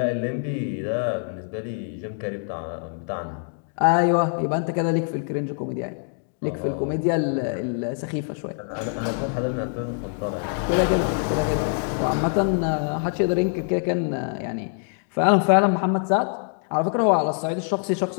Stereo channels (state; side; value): silent; right; 58 dB below the other